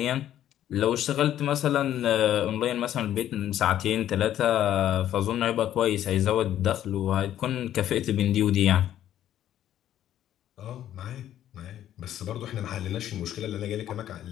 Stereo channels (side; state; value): right; quieter; 11.6 dB